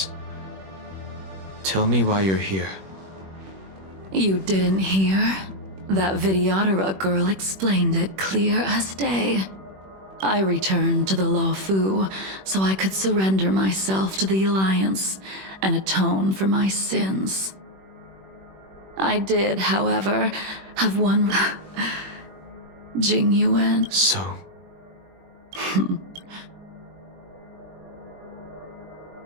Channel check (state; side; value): late; left; 21 ms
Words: Tell me why you're here. You didn't hear? That Vidyadhara girl explained it clear as day. I returned to the Luofu so I could surrender myself to the Alliance and atone for my sins. I did, however, have one Jingyuan. So?